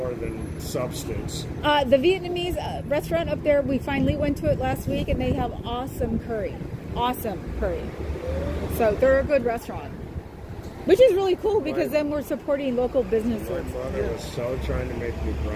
than substance. The Vietnamese restaurant up there, we finally went to it last week, and they have awesome curry. Awesome curry. So they're a good restaurant. Which is really cool, because then we're supporting local businesses. My mother was so trying to make me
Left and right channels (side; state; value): both; identical; correlation 1.00